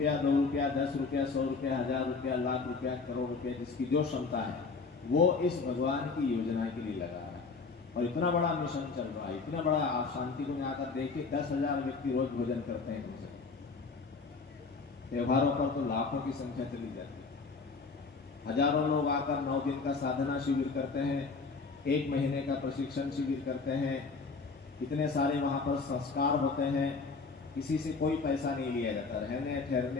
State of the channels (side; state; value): right; quieter; 4.4 dB